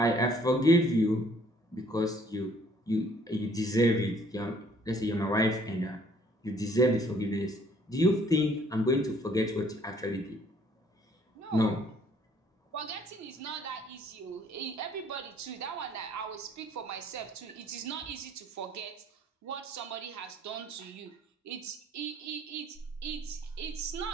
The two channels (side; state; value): both; normal; correlation 0.60